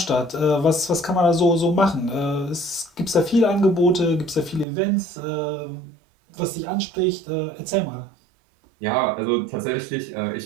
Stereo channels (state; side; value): drops out; left; at 4.7 s